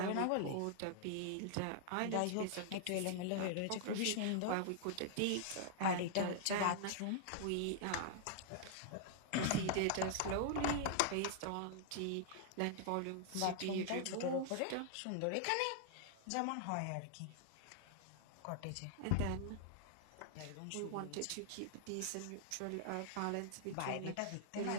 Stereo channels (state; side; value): different; both; correlation -0.01